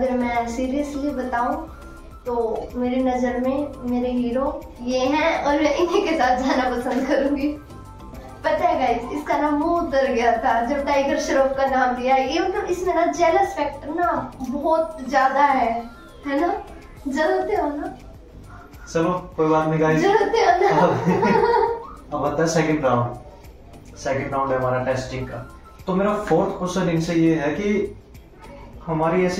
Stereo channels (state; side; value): identical; both; correlation 1.00